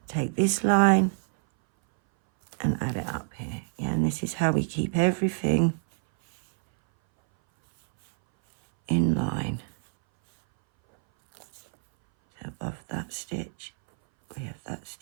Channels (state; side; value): silent; left; 59 dB below the other